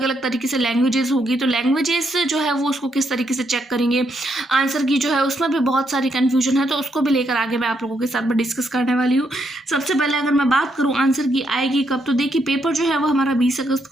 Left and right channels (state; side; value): normal; both; correlation 0.77